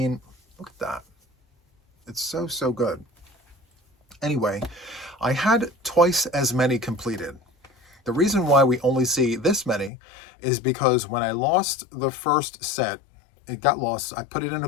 look at that. It's so, so good. Anyway, I had twice as many completed. The reason why we only see this many is because when I lost the first set, it got lost. I put it in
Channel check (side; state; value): right; drops out; at 9.9 s